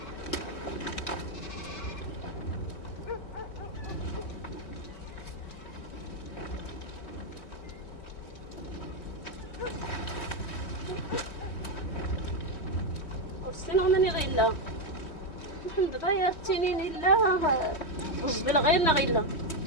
وستنا من غيلا نحن دابا يا التنين إلا وزبل غيرنا غيلا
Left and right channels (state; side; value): late; right; 3.1 ms